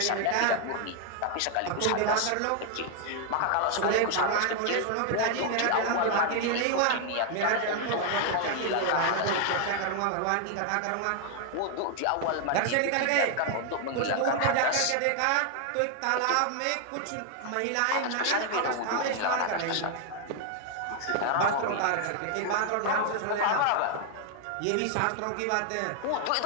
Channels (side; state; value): both; different; correlation 0.00